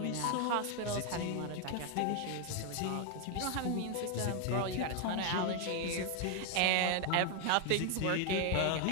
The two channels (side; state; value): both; different; correlation 0.01